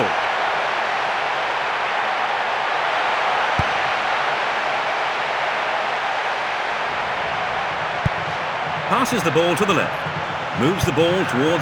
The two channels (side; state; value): both; identical; correlation 1.00